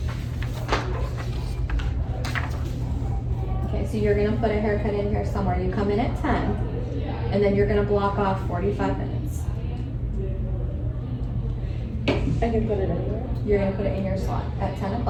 Okay, so you're gonna put a haircut in here somewhere. You come in at 10, and then you're gonna block off 45 minutes. I can put it anywhere. You're gonna put it in your slot at 10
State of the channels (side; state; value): both; identical; correlation 1.00